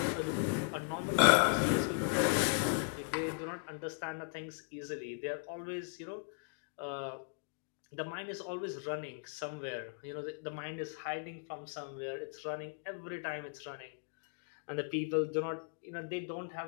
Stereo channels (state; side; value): silent; right; digital silence